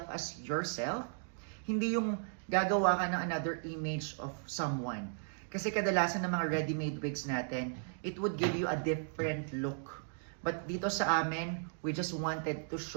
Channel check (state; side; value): silent; left; digital silence